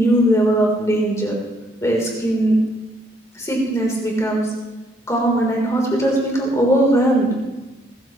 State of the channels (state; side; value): normal; both; correlation 0.68